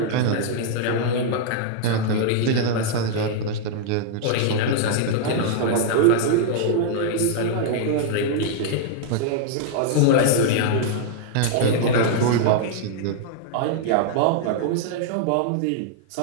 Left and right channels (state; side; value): different; both; correlation -0.01